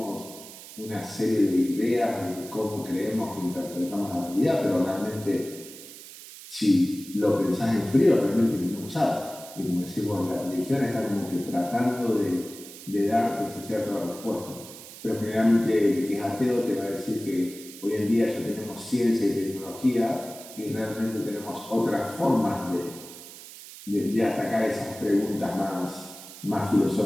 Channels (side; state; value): right; noise; hiss, 15 dB below the sound